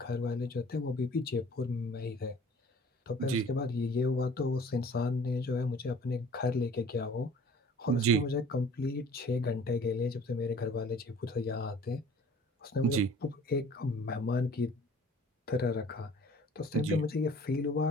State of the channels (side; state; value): both; normal; correlation 0.49